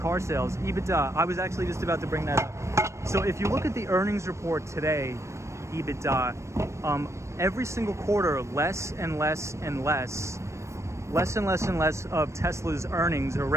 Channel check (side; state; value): left; late; 0.14 ms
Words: sales? EBITDA, I was actually just about to bring that up. So if you look at the earnings report today, EBITDA, every single quarter, less and less of Tesla's earnings or